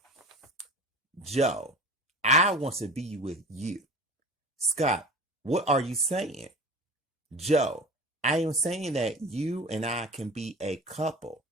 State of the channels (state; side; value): normal; both; correlation 0.36